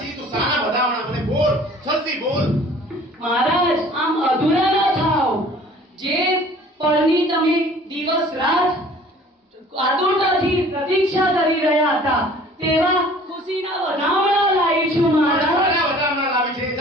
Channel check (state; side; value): normal; both; correlation 0.50